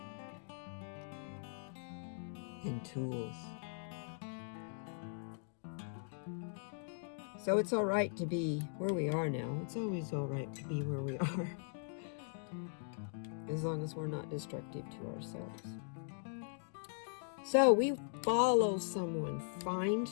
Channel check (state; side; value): silent; right; digital silence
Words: and tools. So it's all right to be where we are now. It's always all right to be where we are, as long as we're not destructive to ourselves. So we follow someone, find